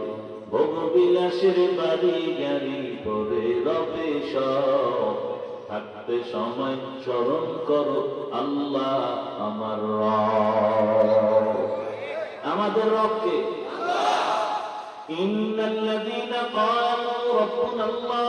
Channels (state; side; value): identical; both; correlation 1.00